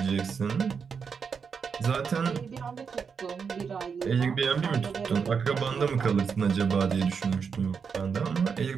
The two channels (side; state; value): left; quieter; 6.1 dB